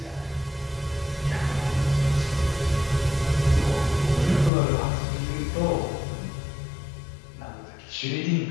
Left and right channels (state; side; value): drops out; right; at 4.5 s